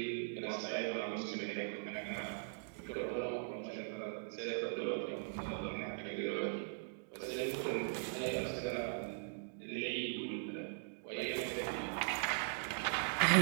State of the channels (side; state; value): left; silent; digital silence